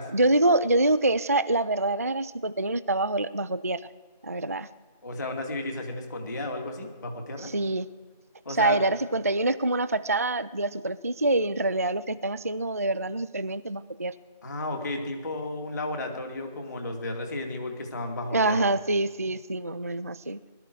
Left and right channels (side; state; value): both; inverted; correlation -0.55